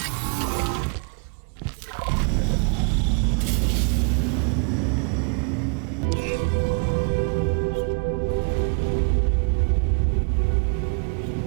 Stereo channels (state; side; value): quieter; left; 39.7 dB